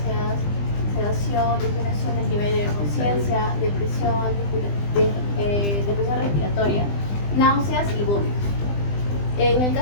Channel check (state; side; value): late; right; 20 ms